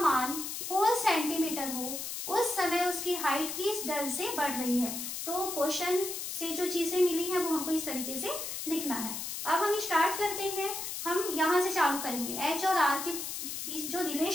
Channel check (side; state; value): left; noise; hiss, 5 dB below the sound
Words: 4 सेंटीमीटर हो उस समय उसकी हाइट किस दर से बढ़ रही है। तो क्वेश्चन से जो चीजें मिली है वो हमको इस तरीके से लिखना है। अब हम स्टार्ट करते हैं, हम यहाँ से चालू करेंगे। h और r के बीच जो